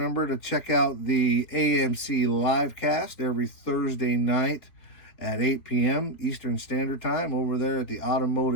to check out the AMC livecast every Thursday night at 8 p.m. Eastern Standard Time over there at the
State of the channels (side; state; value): right; late; 3.9 ms